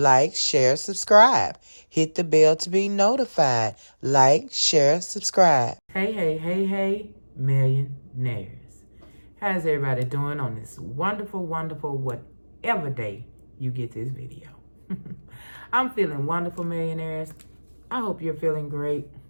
share, subscribe. Hit the bell to be notified. Like, share, subscribe. Hey, millionaires. How's everybody doing on this wonderful, whatever day you get this video? I'm feeling wonderful, millionaires. I hope you're feeling great.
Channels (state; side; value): inverted; both; correlation -1.00